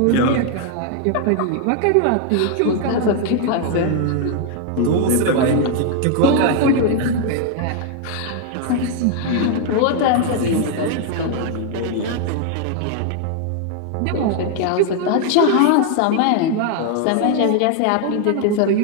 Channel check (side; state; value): both; different; correlation 0.00